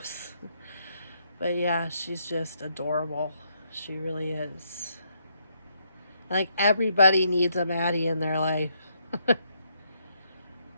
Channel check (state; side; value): inverted; both; correlation -0.75